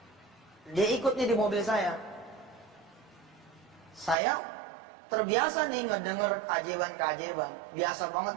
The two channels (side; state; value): left; drops out; at 4.2 s